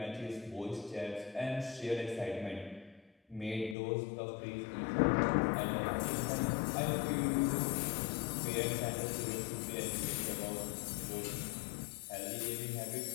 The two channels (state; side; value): drops out; right; at 3.8 s